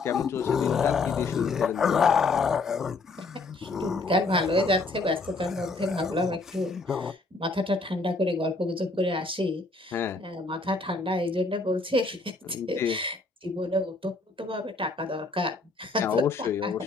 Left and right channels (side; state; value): right; quieter; 3.5 dB